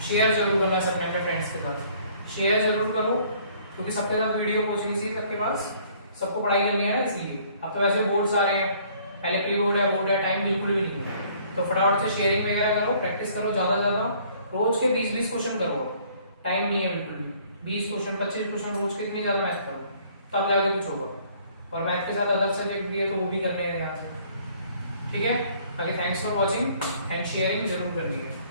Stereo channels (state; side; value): inverted; both; correlation -0.59